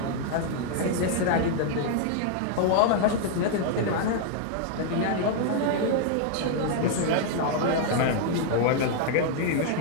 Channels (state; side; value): different; both; correlation 0.00